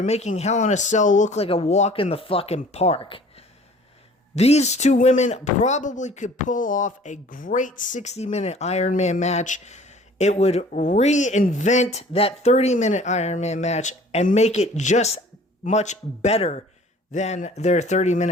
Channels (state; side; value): normal; both; correlation 0.50